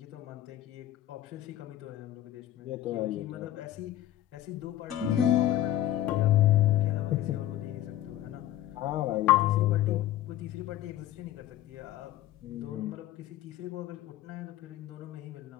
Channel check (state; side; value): quieter; right; 13.4 dB